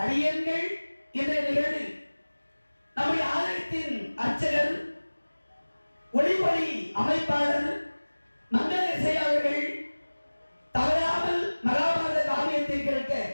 அடியங்கள் இன்றைய நிகழ்வில் நம்முடைய ஆலயத்தின் அர்ச்சகர், ஒளிவொலி அமைப்பாளர் மங்கள இசை அவர்கள் தவறாமல் மகாபாரத காவியத்தை கேட்க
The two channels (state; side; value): inverted; both; correlation -1.00